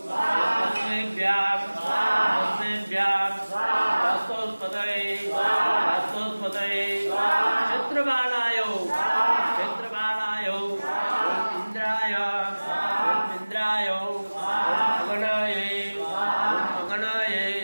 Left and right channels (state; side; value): inverted; both; correlation -1.00